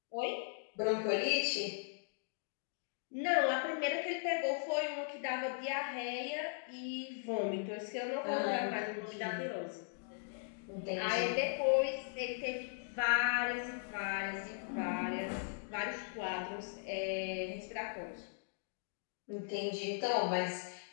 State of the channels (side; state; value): right; silent; digital silence